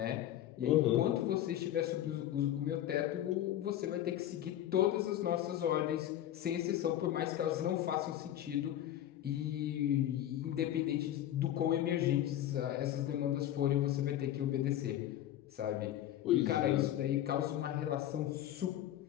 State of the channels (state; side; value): quieter; right; 12.2 dB